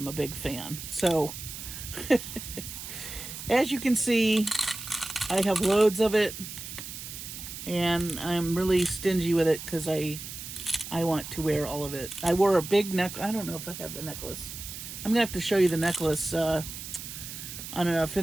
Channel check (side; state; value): right; noise; hiss, 10 dB below the sound